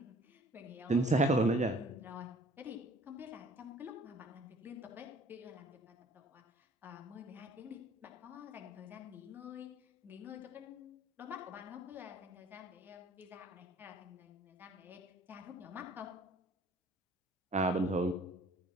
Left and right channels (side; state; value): both; normal; correlation 0.54